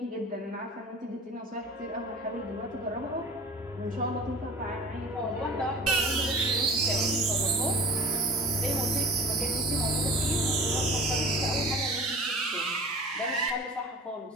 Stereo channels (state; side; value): normal; both; correlation 0.41